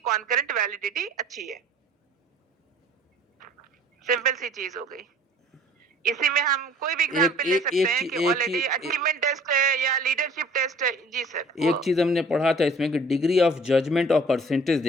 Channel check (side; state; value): both; normal; correlation 0.51